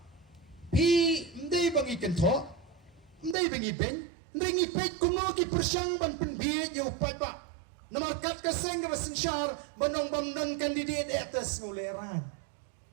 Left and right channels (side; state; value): left; drops out; at 3.4 s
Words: pi ndai bangi kentho ndai bangi pen ndai pet kumno ki persyang ban penbiet yu pada namarkat ka sengga sensyar banong bamnon kandidat atas ngoleran